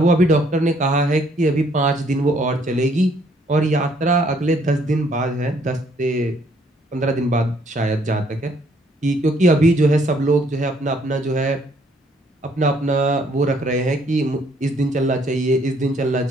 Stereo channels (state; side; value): normal; both; correlation 0.65